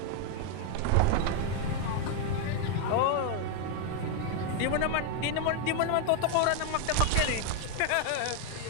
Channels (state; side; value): different; both; correlation 0.00